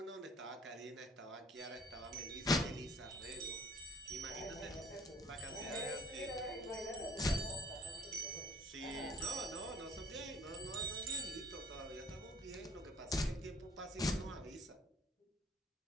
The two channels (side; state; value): both; normal; correlation 0.56